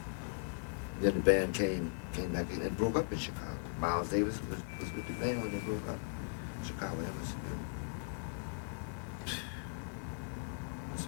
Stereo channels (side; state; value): right; silent; digital silence